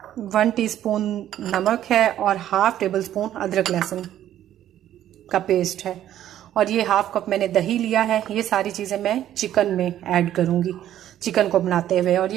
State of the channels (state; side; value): quieter; left; 11.8 dB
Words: 1 टीस्पून नमक है और हाफ टेबल स्पून अदरक लहसुन का पेस्ट है। और ये हाफ कप मैंने दही लिया है। ये सारी चीज़ें मैं चिकन में ऐड करूँगी चिकन को बनाते हुए। और